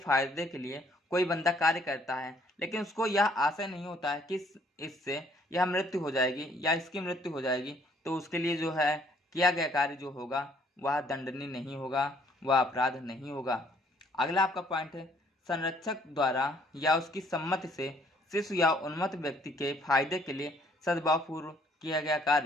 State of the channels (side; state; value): both; normal; correlation 0.63